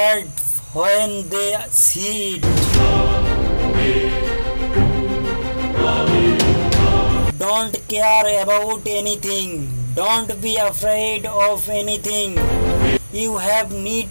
when they see it. Don't care about anything. Don't be afraid of anything. You have need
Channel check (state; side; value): inverted; both; correlation -1.00